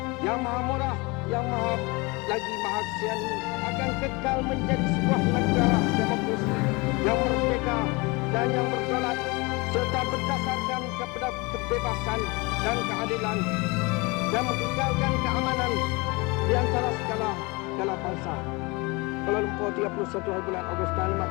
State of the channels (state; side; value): quieter; right; 26.3 dB